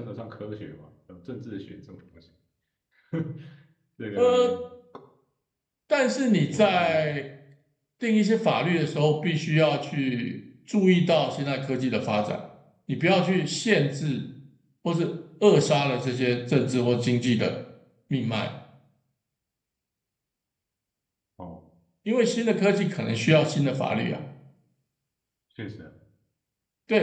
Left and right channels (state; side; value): identical; both; correlation 1.00